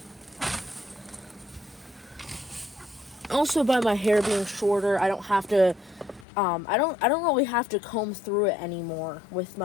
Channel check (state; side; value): drops out; right; at 6.2 s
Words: also, by my hair being shorter, I don't have to I don't really have to comb through it anymore with